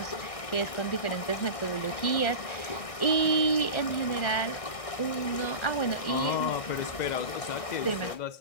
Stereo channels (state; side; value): late; right; 1.6 ms